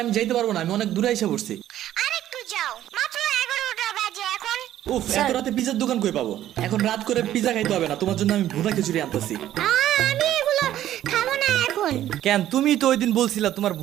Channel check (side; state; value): left; quieter; 12.4 dB